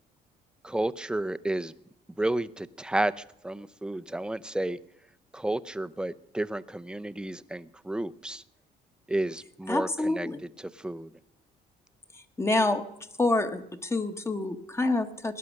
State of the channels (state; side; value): normal; both; correlation 0.86